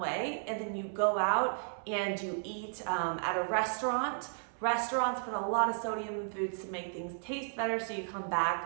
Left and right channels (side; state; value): left; silent; 55 dB below the other